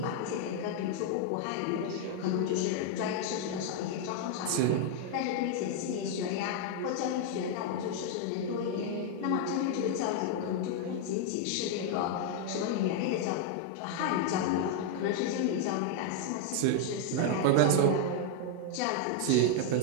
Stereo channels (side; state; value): both; different; correlation 0.00